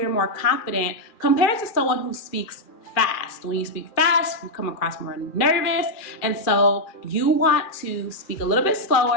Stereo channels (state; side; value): late; right; 2.4 ms